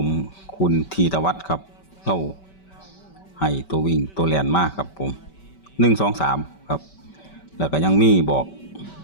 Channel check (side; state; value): right; late; 5.2 ms